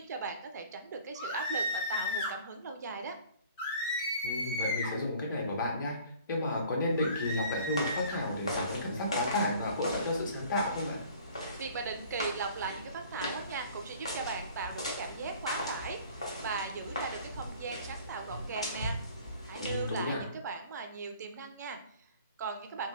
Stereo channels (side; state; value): both; inverted; correlation -0.50